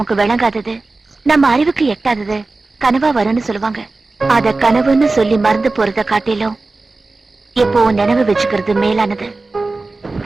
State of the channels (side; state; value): left; quieter; 3.5 dB